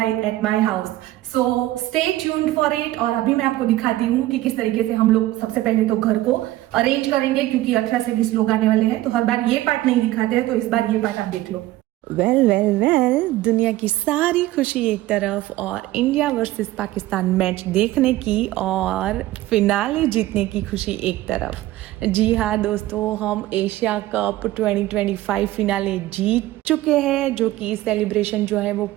at my house. So stay tuned for it. और अभी मैं आपको दिखाती हूँ कि किस तरीके से हम लोग सबसे पहले तो घर को अरेंज करेंगे क्योंकि 18 से 20 लोग आने वाले हैं, तो हर बार ये पार्ट नहीं दिखाते हैं, तो इस बार ये पार्ट आप देख लो। वेल दुनिया की सारी खुशी एक तरफ और इंडिया वर्सेस पाकिस्तान मैच देखने की और फिनाले जीतने की खुशी एक तरफ। जी हाँ दोस्तों, हम एशिया कप 2025 फिनाले जीत चुके हैं, जो कि सेलिब्रेशन जो है वो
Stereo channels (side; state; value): left; quieter; 16.2 dB